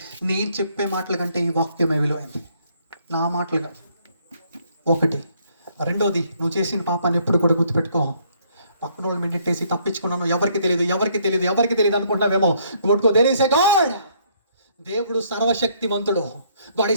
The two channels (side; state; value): both; inverted; correlation -0.67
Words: నేను చెప్పే మాటల కంటే ఈ వాక్యమే విలువైంది, నా మాటలుగా. ఒకటి. రెండోది, నువ్వు చేసిన పాపాన్ని ఎప్పుడు కూడా గుర్తుపెట్టుకో. పక్కన వాళ్ళు మెడిటేసి తప్పించుకున్నాను, ఎవరికి తెలియదు అనుకుంటున్నావేమో. గుర్తుకో, దేర్ ఈస్ ఎ గాడ్. దేవుడు సర్వశక్తివంతుడు, గాడ్